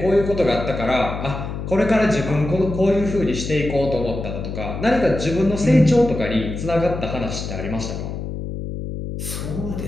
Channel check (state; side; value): noise; left; hum, 6 dB below the sound